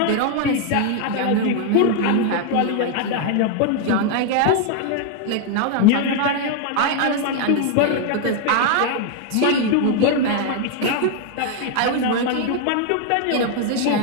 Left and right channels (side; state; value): both; different; correlation 0.00